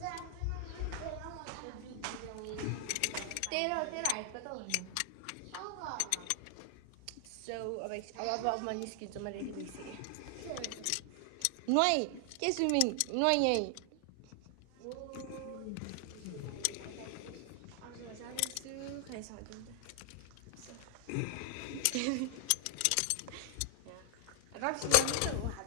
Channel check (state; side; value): different; both; correlation 0.00